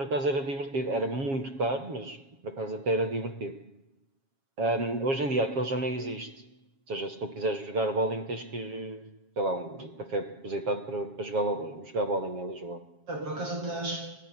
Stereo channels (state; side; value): late; left; 7.3 ms